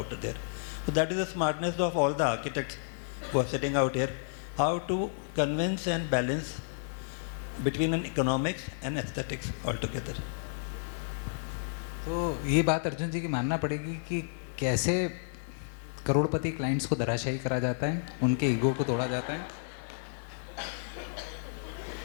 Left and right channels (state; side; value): silent; right; 57 dB below the other